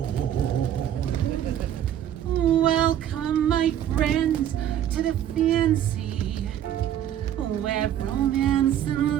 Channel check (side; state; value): left; quieter; 10.6 dB